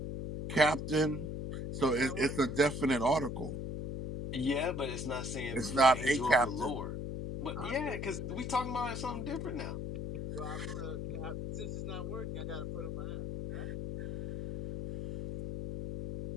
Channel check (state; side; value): noise; left; hum, 5 dB below the sound